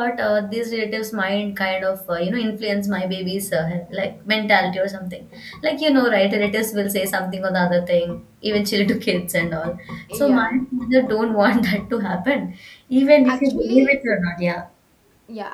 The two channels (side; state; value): both; identical; correlation 1.00